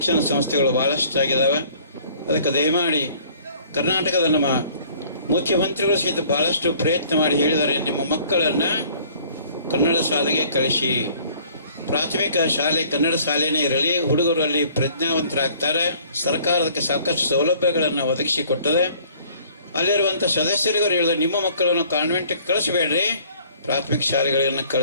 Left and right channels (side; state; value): both; inverted; correlation -0.55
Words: ಸಂಸ್ಥೆಗಳು ಭಾಳಷ್ಟು ಆಗಿದ್ದಾವೆ. ಅದಕ್ಕೆ ದಯಮಾಡಿ ಕರ್ನಾಟಕದ ನಮ್ಮ ಮುಖ್ಯಮಂತ್ರಿಗಳು ಸಹಿತ ಭಾಳಷ್ಟು ಪ್ರಯತ್ನ ಮಾಡಿ ಹೇಳಿದ್ದಾರೆ, ನಿಮ್ಮ ಮಕ್ಕಳನ್ನು ಕನ್ನಡ ಶಾಲೆಗೆ ಕಳಿಸಿ. ಪ್ರಾಥಮಿಕ ಶಾಲೆ ಕನ್ನಡ ಶಾಲೆಯೇ ಇರಲಿ, ಹುಡುಗರು ಅಲ್ಲಿ ಪ್ರಜ್ಞಾವಂತರಾಗ್ತಾರೆ. ಸರ್ಕಾರ ಅದಕ್ಕೆ ಸಾಕಷ್ಟು ಸೌಲಭ್ಯಗಳನ್ನು ಒದಗಿಸಿಕೊಟ್ಟದೆ. ಅಲ್ಲಿರುವಂಥ ಸದಸ್ಯರಿಗೂ ಹೇಳಿದ್ರೆ, ನಿಮ್ಮ ಮಕ್ಕಳನ್ನು ಕಾನ್ವೆಂಟ್ಗೆ ಕಳಿಸಬೇಡ್ರಿ, ಪ್ರಾಥಮಿಕ ಶಾಲೆಗಳನ್ನು